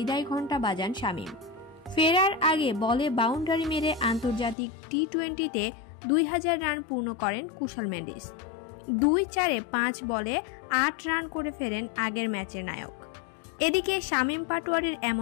ঘণ্টা বাজান শামীম। ফেরার আগে বলে বাউন্ডারি মেরে আন্তর্জাতিক টি-20তে 2000 রান পূর্ণ করেন কুশাল মেন্ডিস। 2-4-এ 5 বলে 8 রান করে ফেরেন আগের ম্যাচের নায়ক। এদিকে শামীম পাটোয়ারির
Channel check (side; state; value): right; drops out; at 4.5 s